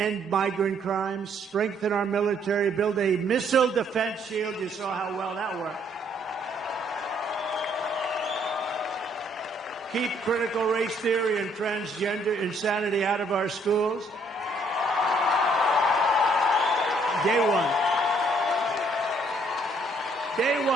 migrant crimes, strengthen our military, build a missile defense shield. You saw how well that worked. Keep critical race theory and transgender insanity out of our schools. Day one. Day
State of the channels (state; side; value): normal; both; correlation 0.66